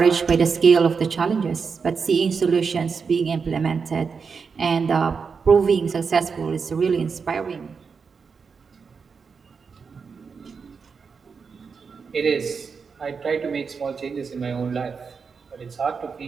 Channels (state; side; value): quieter; left; 5.5 dB